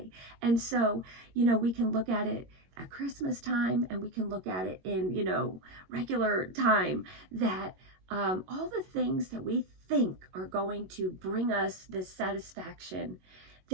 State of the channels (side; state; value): left; late; 22 ms